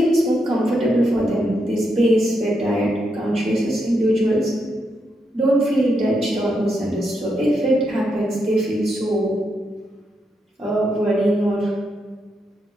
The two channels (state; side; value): normal; both; correlation 0.82